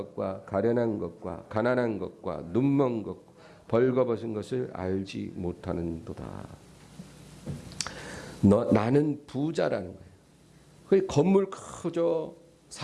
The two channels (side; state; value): both; identical; correlation 1.00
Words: 가련한 것과 가난한 것과 눈먼 것 벌거벗은 것을 알지 못하는도다. 나는 부자라는 거예요. 그 건물 크죠,